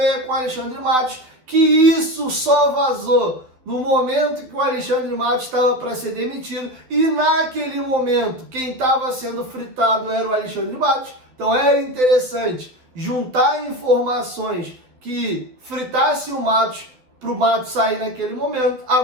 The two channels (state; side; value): late; left; 12 ms